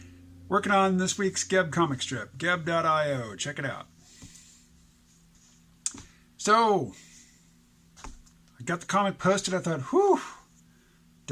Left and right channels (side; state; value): both; identical; correlation 1.00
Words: Working on this week's Geb comic strip, geb.io. Check it out. So, I got the comic posted. I thought, whew,